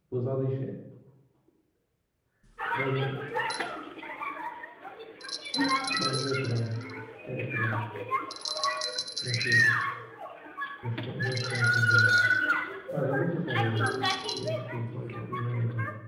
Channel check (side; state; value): both; identical; correlation 1.00